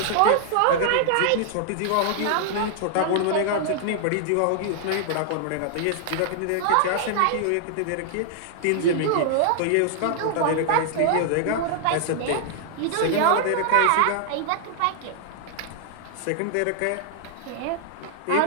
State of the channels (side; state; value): both; different; correlation -0.01